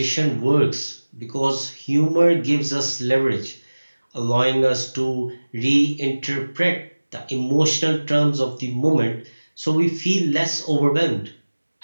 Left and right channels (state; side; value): inverted; both; correlation -1.00